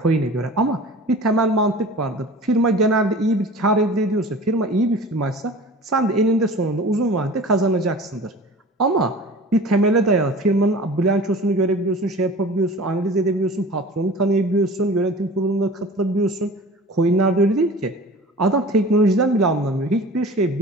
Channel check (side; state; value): both; normal; correlation 0.40